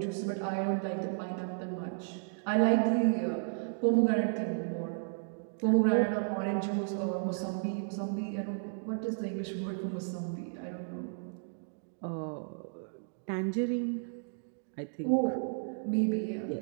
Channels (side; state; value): left; silent; digital silence